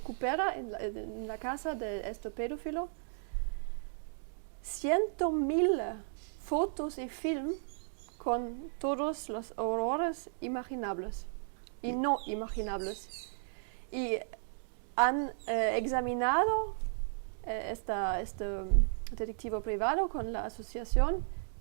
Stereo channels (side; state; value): left; silent; digital silence